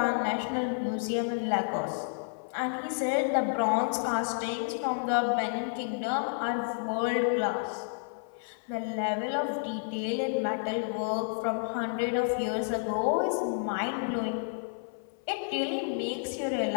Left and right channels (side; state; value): right; silent; 55 dB below the other